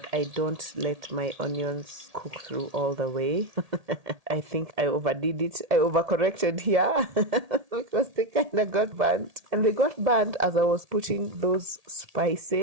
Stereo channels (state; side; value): late; left; 1.8 ms